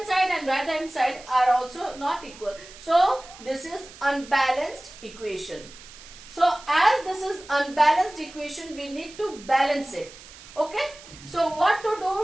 side and right hand side are also not equal. So this is unbalanced equation. So as this is unbalanced equation, we need to balance it. Okay. So what to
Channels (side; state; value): right; noise; hiss, 19 dB below the sound